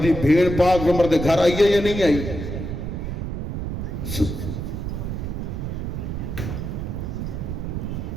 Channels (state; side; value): noise; right; rumble, 4 dB below the sound